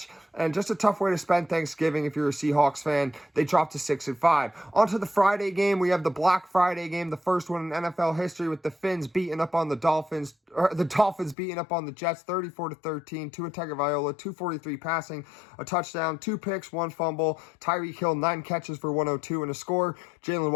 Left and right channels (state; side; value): drops out; right; at 11.4 s